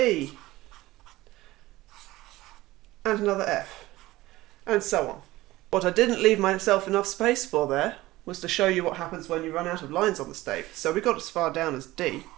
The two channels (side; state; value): left; quieter; 17.9 dB